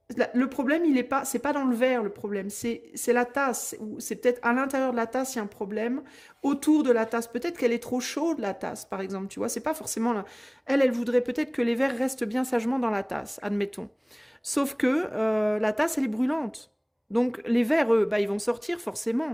le problème, il est pas, c'est pas dans le verre le problème, c'est la tasse. Ou c'est peut-être à l'intérieur de la tasse, il y a un problème. Autour de la tasse, peut-être qu'elle est trop chaude la tasse, par exemple. Tu vois, c'est pas forcément là. Elle voudrait peut-être que les verres restent bien sagement dans la tasse, admettons. Sauf que la tasse, elle est brûlante. Donc les verres, eux, bah, ils vont sortir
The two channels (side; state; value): both; identical; correlation 1.00